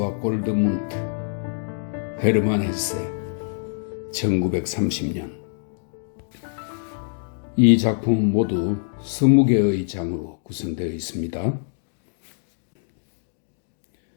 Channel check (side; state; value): right; silent; digital silence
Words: 골드문트, 헤르만 헤세, 1930년. 이 작품은 모두 20개의 장으로 구성되어 있습니다.